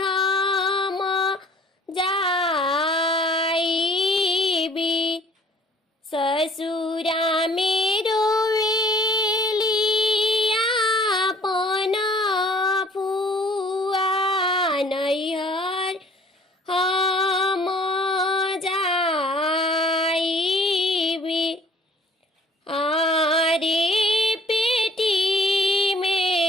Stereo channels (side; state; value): both; normal; correlation 0.55